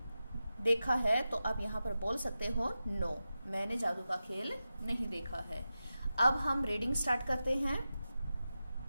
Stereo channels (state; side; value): inverted; both; correlation -0.93